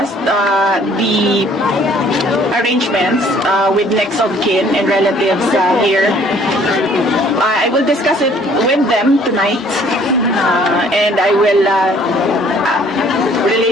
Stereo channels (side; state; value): both; normal; correlation 0.58